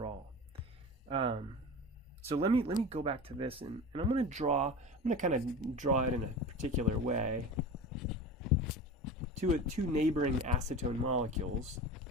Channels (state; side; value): normal; both; correlation 0.31